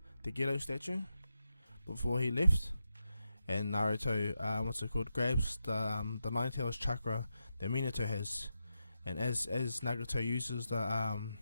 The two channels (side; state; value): both; inverted; correlation -0.87